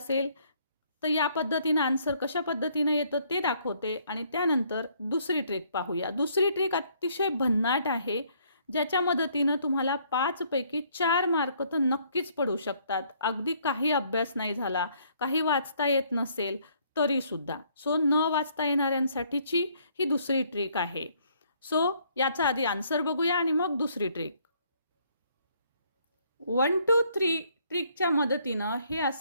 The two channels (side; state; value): both; inverted; correlation -0.65